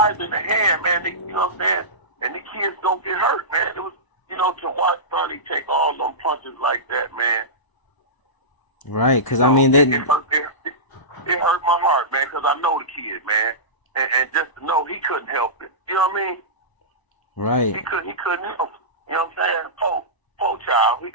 in the hand, man. They, you know what I'm saying? And the kids don't get hurt, man. It was, you know, to watch Sonny take all them punches like that, man. Right, because, I mean, they... It hurt my heart, man, because I know the kid, man. And just to know he couldn't help it. You know what I mean? Right. He couldn't help it. You know what I'm saying? Poor child, he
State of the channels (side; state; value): right; late; 1.0 ms